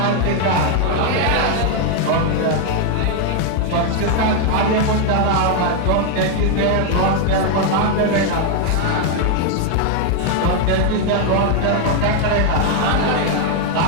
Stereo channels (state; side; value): different; both; correlation 0.00